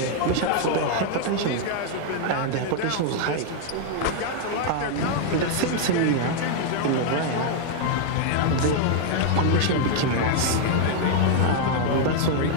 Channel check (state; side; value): different; both; correlation 0.00